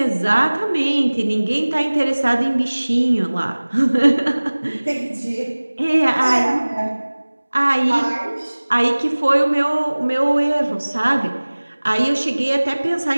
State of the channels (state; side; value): inverted; both; correlation -1.00